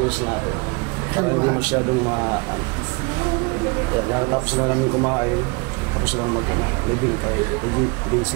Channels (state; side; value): quieter; left; 29.3 dB